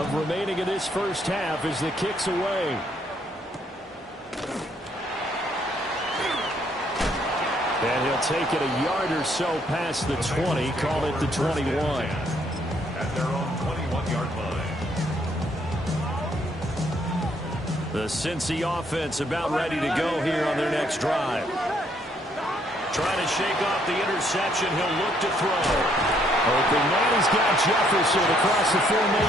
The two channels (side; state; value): both; normal; correlation 0.69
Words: remaining in this first half as the kick's away. And he'll take it a yard or so past the 20, call it the 21. At their own 21-yard line. The Cincy offense about ready to go here on their next drive. Trying to shake off the interception. He'll look to throw. Open man, he's got Jefferson across the